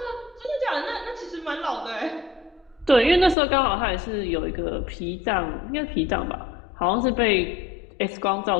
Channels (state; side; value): drops out; right; at 3.4 s